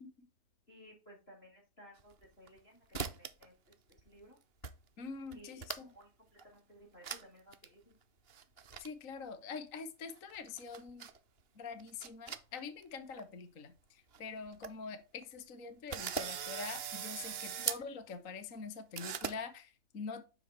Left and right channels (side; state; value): right; late; 2.9 ms